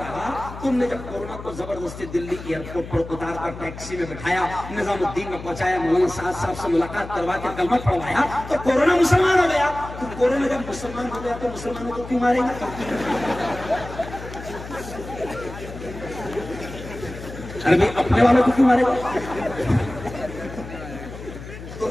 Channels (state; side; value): noise; left; hum, 12 dB below the sound